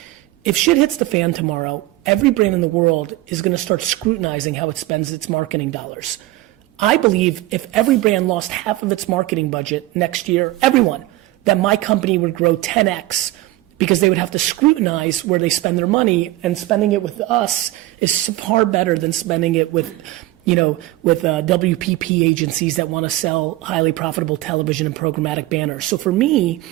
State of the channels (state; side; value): quieter; left; 17.2 dB